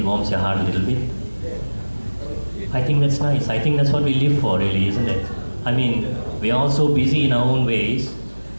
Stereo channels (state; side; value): inverted; both; correlation -1.00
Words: warms your heart a little bit. I think that's nice. I think that's what we live for, really, isn't it? I mean, we're all so busy in our own ways.